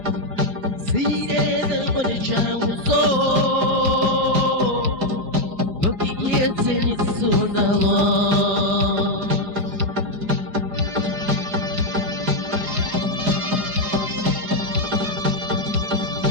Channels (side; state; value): left; late; 4.9 ms